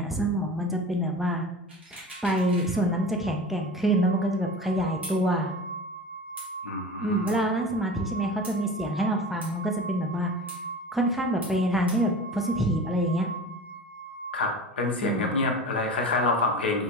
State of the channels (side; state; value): both; normal; correlation 0.34